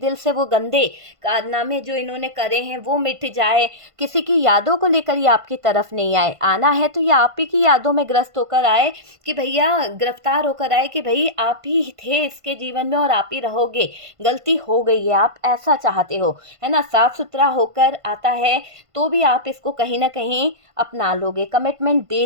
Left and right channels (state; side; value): late; left; 1.5 ms